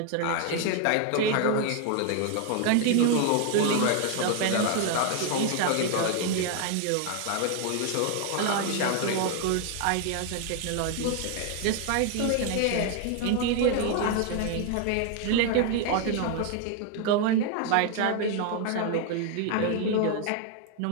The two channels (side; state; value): both; different; correlation 0.00